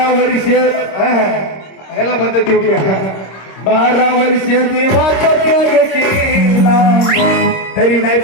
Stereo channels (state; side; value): late; right; 26 ms